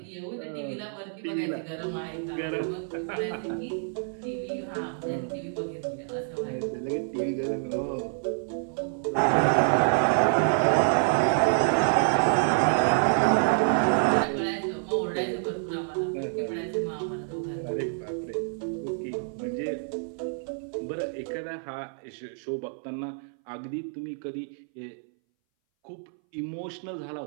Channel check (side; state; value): left; silent; 59 dB below the other